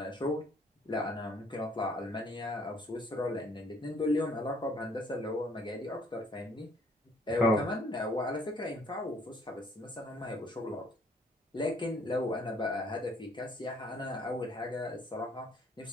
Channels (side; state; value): both; normal; correlation 0.62